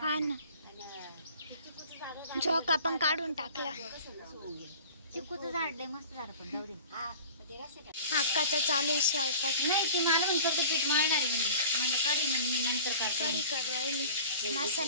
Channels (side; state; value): both; inverted; correlation -0.43